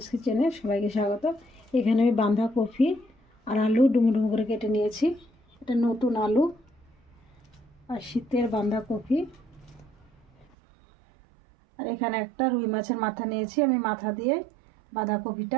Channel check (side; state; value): left; drops out; at 10.5 s